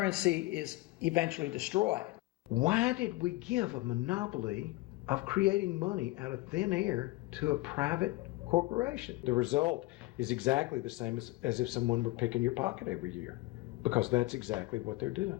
is eventually destroyed. Why did we give a monopoly of creating money out of thin air to a private corporation? The result is exactly the same as if someone were picking your pocket every year, because that's exactly what they're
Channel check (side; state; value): right; quieter; 20.0 dB